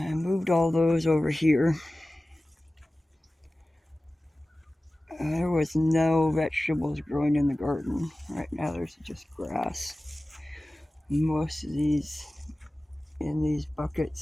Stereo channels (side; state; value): both; normal; correlation 0.96